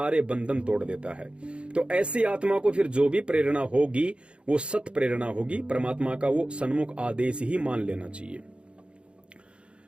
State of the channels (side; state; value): left; late; 0.057 ms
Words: बंधन तोड़ देता है। तो ऐसी आत्मा को फिर जो भी प्रेरणा होगी वो सत प्रेरणा होगी। परमात्मा का वो सन्मुख आदेश ही मान लेना चाहिए।